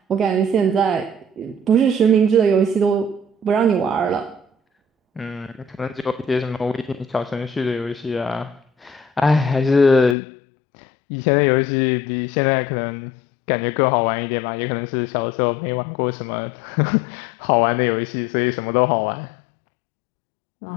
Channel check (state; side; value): drops out; right; at 10.2 s